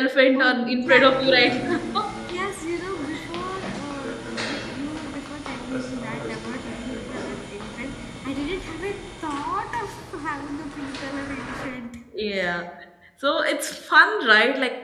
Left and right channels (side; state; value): both; identical; correlation 1.00